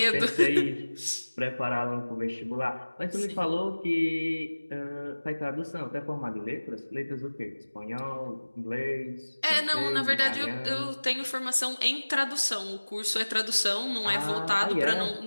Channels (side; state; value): both; inverted; correlation -1.00